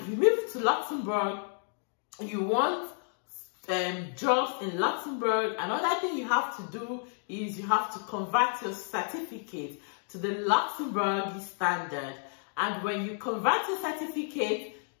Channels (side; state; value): right; silent; 55 dB below the other